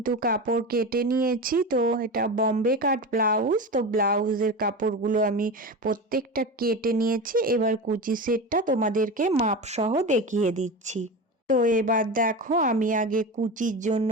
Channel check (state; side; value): normal; both; correlation 0.25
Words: কাপড় কেটে নিয়েছি। তো এটা বম্বে কাট ব্লাউজ। তো ব্লাউজের কাপড়গুলো আমি প্রত্যেকটা কেটে নিয়েছি। এবার কুচি সেটটা তোমাদেরকে মাপ সহ দেখিয়ে দিচ্ছি। তো এবার দেখো আমি আগে কুচির জন্য